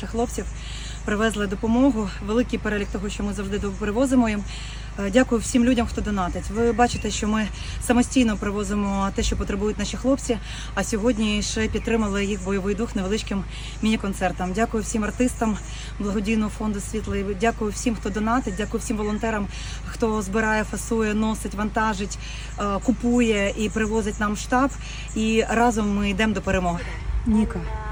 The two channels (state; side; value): identical; both; correlation 1.00